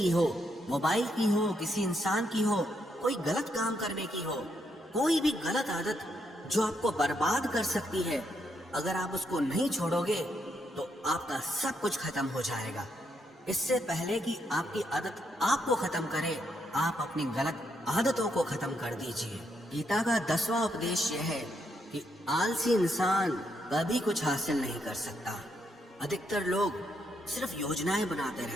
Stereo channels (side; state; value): both; normal; correlation 0.78